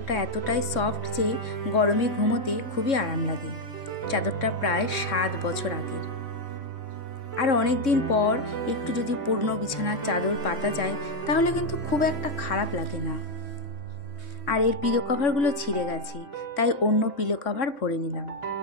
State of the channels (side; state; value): right; late; 3.6 ms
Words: এতটাই সফট যে গরমে ঘুমোতে খুবই আরাম লাগে। চাদরটা প্রায় 7 বছর আগের। আর অনেক দিন পর একটু যদি পুরনো বিছানার চাদর পাতা যায়, তাহলে কিন্তু খুব একটা খারাপ লাগে না। আর এর পিলো কভারগুলো ছিঁড়ে গেছে, তাই অন্য পিলো কভার ভরে নিলাম।